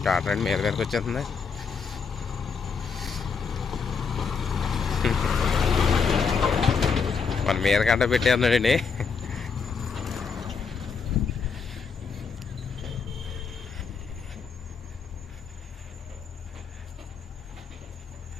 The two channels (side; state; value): right; quieter; 5.5 dB